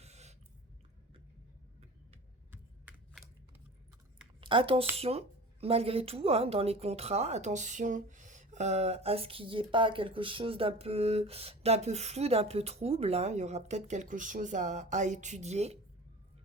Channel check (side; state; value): both; normal; correlation 0.37